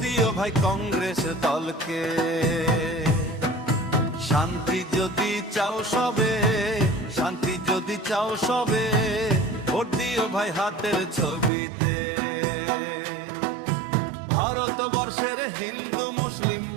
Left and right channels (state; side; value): drops out; left; at 11.5 s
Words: দিও ভাই কংগ্রেস দলকে। শান্তি যদি চাও সবে, শান্তি যদি চাও সবে, ভোট দিও ভাই হাতের ছবিতে। ভারতবর্ষের হিন্দু মুসলিম,